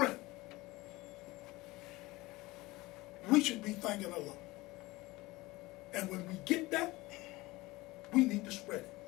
We should be thanking Allah. And when we get that, we need to spread it.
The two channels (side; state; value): right; quieter; 20.6 dB